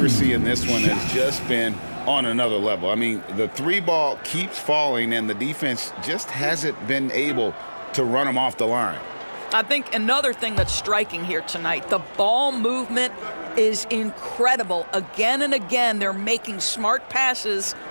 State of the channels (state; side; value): inverted; both; correlation -1.00